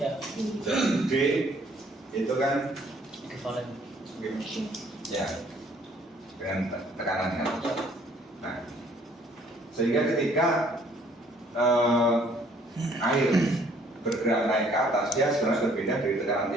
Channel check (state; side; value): normal; both; correlation 0.61